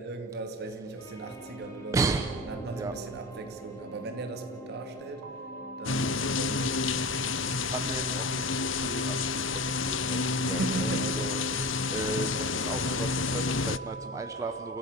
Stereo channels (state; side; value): normal; both; correlation 0.30